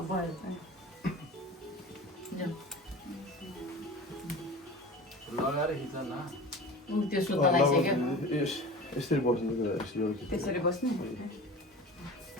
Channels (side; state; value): both; normal; correlation 0.36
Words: भयो लगाएर खिच न त्यो सुत्न लागिसक्यो। यसरी बस्नु त्यसरी बस्ने